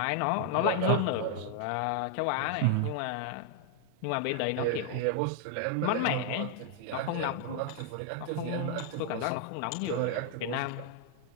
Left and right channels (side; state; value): both; different; correlation 0.00